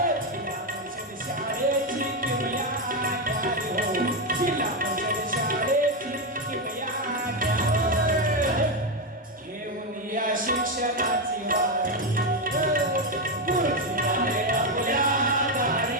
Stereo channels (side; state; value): both; normal; correlation 0.07